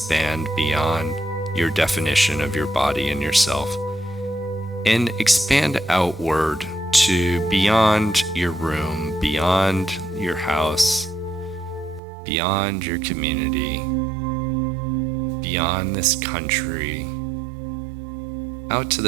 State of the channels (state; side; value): drops out; left; at 12.0 s